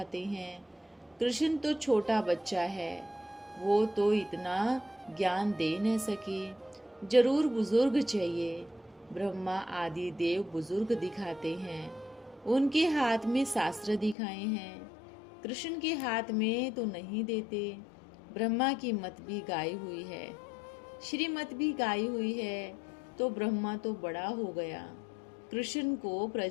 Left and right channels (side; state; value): right; drops out; at 14.2 s